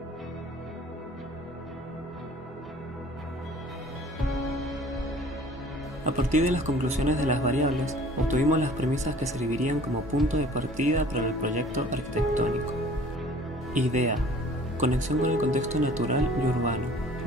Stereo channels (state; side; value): normal; both; correlation 0.50